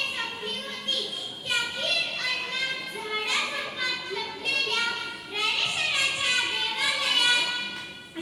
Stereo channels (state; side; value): identical; both; correlation 1.00